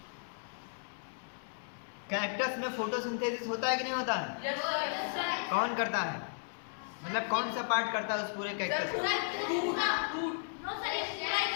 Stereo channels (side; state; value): right; silent; digital silence